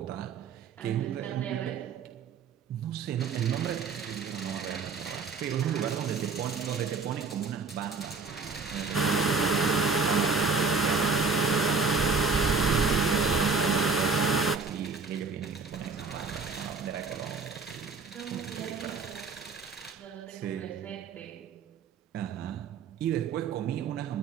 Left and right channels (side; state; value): left; quieter; 4.7 dB